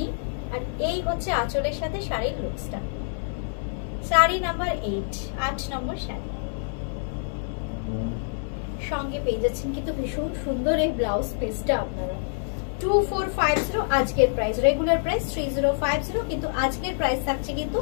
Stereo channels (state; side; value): silent; right; digital silence